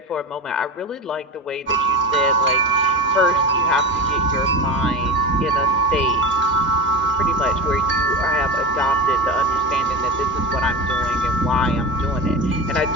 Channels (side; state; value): both; normal; correlation 0.25